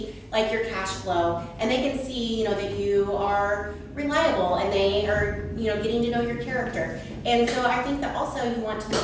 like your cash flow, and they can see, that you are reliable, and they are, getting to know your character. And so I think that also you want to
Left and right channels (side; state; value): both; identical; correlation 1.00